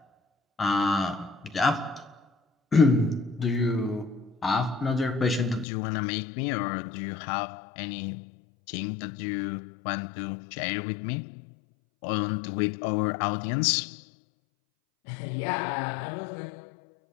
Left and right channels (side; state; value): right; drops out; at 5.7 s